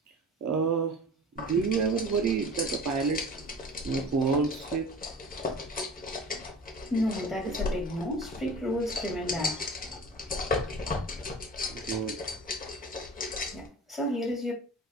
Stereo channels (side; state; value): both; normal; correlation 0.39